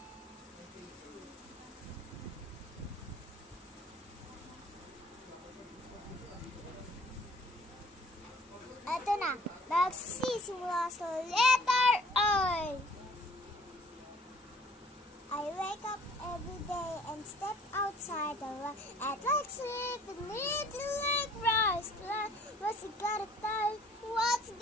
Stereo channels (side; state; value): both; normal; correlation 0.55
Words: Ito na. Magsisimula sa letter I. I wake up every day and step outside the light. I'd like sleep and need to like rise. What's it gotta tell? What's